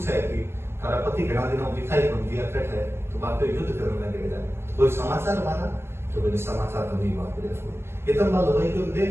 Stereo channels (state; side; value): late; left; 0.12 ms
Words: है कि तारा पति घना दिनों दिखाई बन दिया कट है तो बात युद्ध करने लगे जाए कोई समाचार मारा तो मैंने समाचार तो नहीं बात करे इतना बात लुगाई को